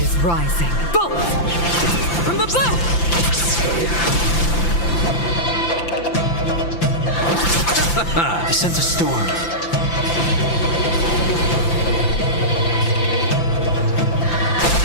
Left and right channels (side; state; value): right; late; 5.9 ms